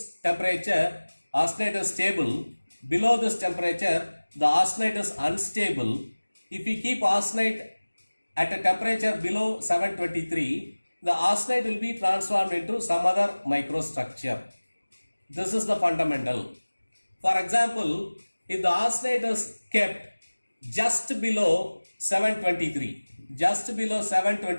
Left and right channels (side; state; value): both; inverted; correlation -1.00